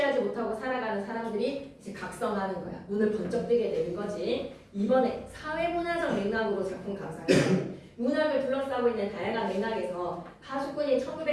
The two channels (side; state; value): both; identical; correlation 1.00